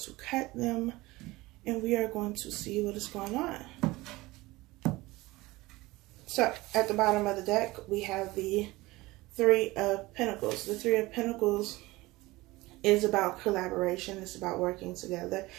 cut them and we are going to see what is going on. So at the bottom of the deck, we have the Three of Pentacles. The Three of Pentacles is about collaboration. It's about working together.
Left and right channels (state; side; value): quieter; left; 20.3 dB